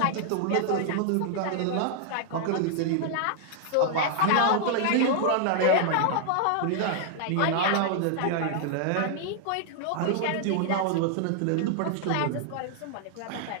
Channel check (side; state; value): both; different; correlation -0.01